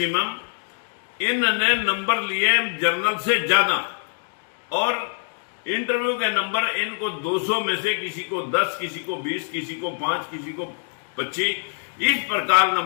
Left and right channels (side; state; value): right; silent; 61 dB below the other